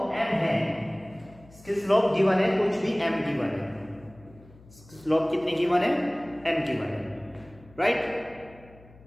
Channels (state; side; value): noise; left; hum, 23 dB below the sound